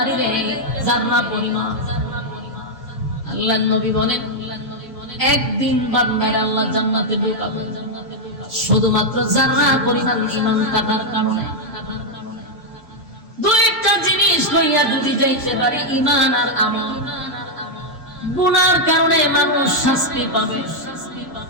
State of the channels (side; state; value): both; normal; correlation -0.01